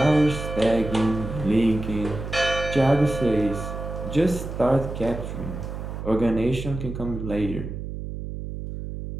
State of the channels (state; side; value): noise; right; hum, 7 dB below the sound